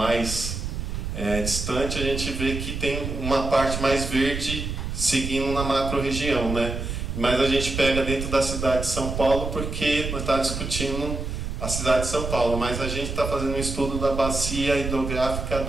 distante, a gente vê que tem uma parte mais verde seguindo na macro-região, né? Mas a gente pega dentro da cidade de São Paulo porque nós estamos discutindo a cidade de São Paulo, mas a gente está fazendo um estudo da bacia hidrográfica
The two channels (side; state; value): right; noise; rumble, 5 dB below the sound